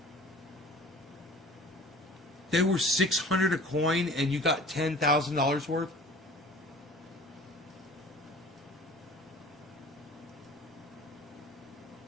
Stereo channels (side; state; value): both; normal; correlation 0.45